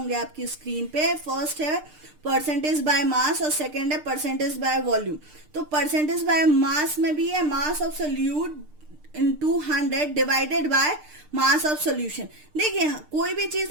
आपकी स्क्रीन पे। फर्स्ट है परसेंटेज बाय मास और सेकेंड है परसेंटेज बाय वॉल्यूम। तो परसेंटेज बाय मास में भी है मास of solute into 100 divided by mass of solution. देखिए कोई भी चीज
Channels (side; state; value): left; late; 6.6 ms